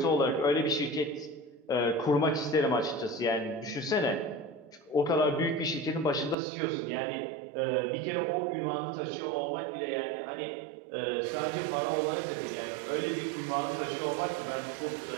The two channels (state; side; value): drops out; left; at 6.4 s